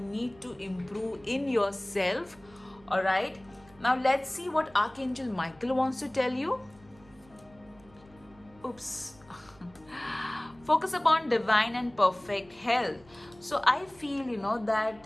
need to improve in yourself. All right, now let's see what Archangel Michael wants to tell you. Oops. Focus upon divine and perfect health. So I feel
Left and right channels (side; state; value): right; noise; hum, 26 dB below the sound